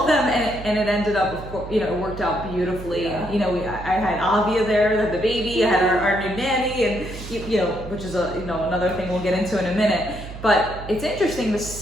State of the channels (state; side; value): noise; right; hum, 12 dB below the sound